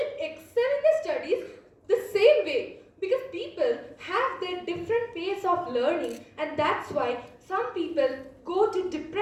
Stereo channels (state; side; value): identical; both; correlation 1.00